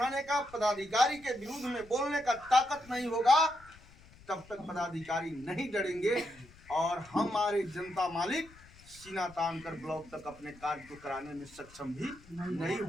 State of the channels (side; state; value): left; noise; rumble, 23 dB below the sound